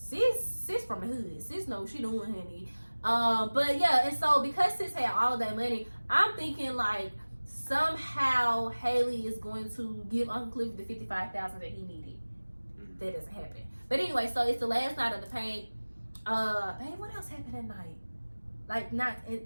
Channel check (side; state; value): both; inverted; correlation -1.00